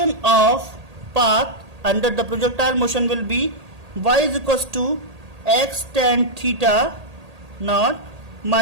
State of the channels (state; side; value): late; left; 1.8 ms